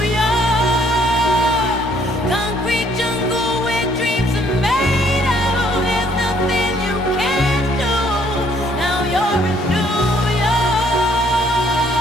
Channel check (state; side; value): normal; both; correlation 0.64